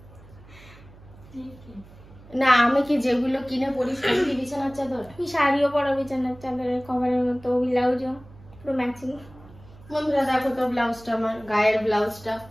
না আমি কি যেগুলো কিনে পরি সেগুলি বিছানার চাদর? আমি শাড়িও পরা বিছানার চাদরের কভারের মতো, ব্লাউজও পুরো ম্যাচিং। বন্ধুরা দেখো তো ব্লাউজটা, আমার গায়ের ব্লাউজটা,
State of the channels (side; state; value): right; noise; hum, 22 dB below the sound